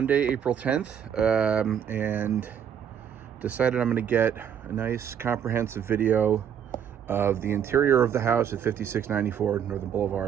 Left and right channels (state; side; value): quieter; left; 8.6 dB